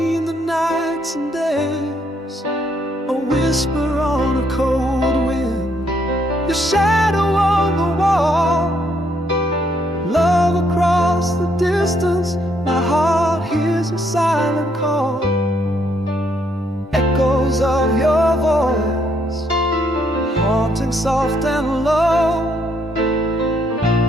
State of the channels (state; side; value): normal; both; correlation 0.72